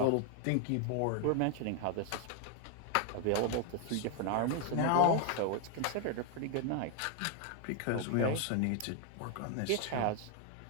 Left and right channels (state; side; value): different; both; correlation 0.01